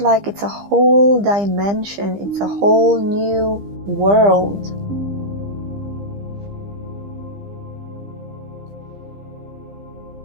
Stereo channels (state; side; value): late; left; 15 ms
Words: like it's a whole dimension, it's a whole new world.